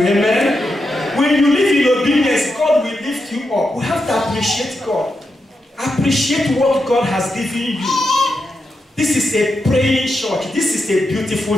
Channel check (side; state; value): both; normal; correlation 0.86